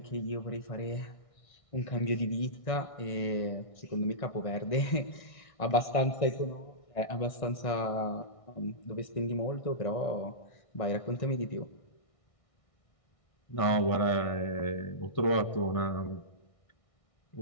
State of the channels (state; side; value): late; right; 1.6 ms